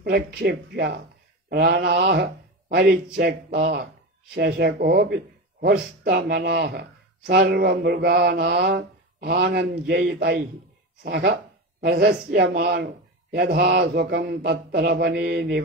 ప్రాణాః పరిత్యక్తాః శశకోపి హృష్టమనాః సర్వమృగాణాం ఆనందయితైః సహ ప్రశస్యమానో యథా సుఖం తత్ర వనే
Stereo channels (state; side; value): normal; both; correlation 0.22